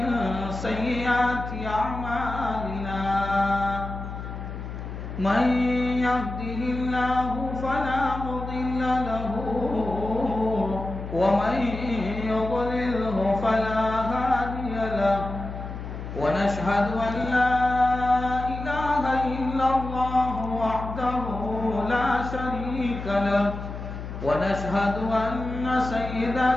سيئات أعمالنا من يهده الله فلا مضل له ومن يضلله فلا هادي له ونشهد أن لا إله إلا الله وحده لا شريك له ونشهد أن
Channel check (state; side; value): noise; left; hum, 8 dB below the sound